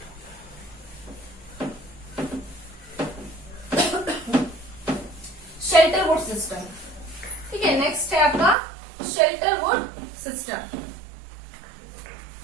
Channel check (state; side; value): drops out; left; at 8.6 s